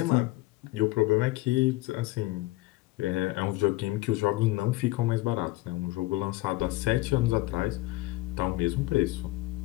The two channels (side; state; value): right; quieter; 18.9 dB